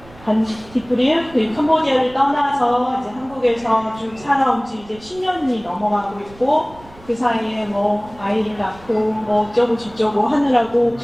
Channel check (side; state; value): right; noise; rumble, 22 dB below the sound